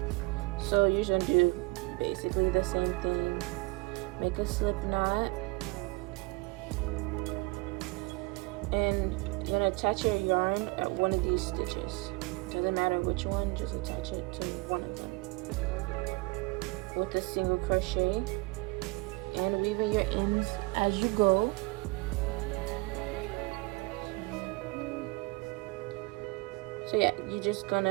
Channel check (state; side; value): quieter; left; 26.1 dB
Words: So you're just gonna do basically the same thing. Make a slip knot, and you're gonna attach your yarn at one of these stitches. Doesn't matter which one, just attach it to one of them with a single crochet, and weaving your ends as you go. So yeah, you're just